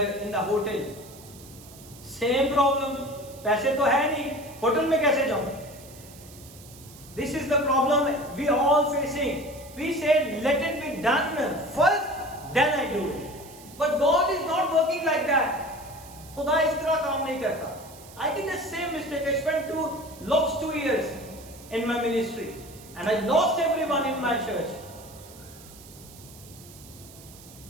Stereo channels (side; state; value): right; noise; hiss, 20 dB below the sound